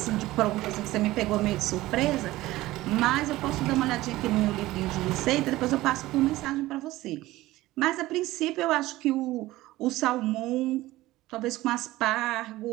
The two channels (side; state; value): left; quieter; 17.4 dB